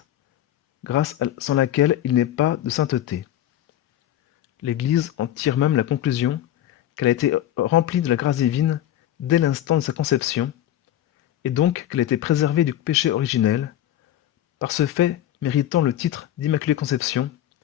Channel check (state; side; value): quieter; right; 12.1 dB